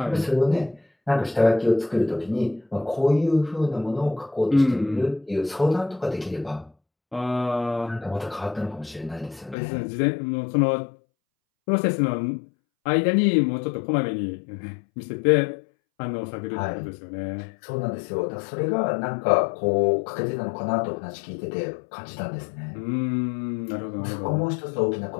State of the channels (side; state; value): right; drops out; at 9.6 s